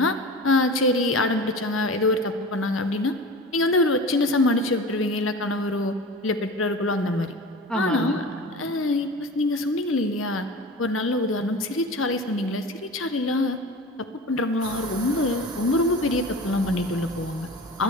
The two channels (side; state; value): both; normal; correlation 0.34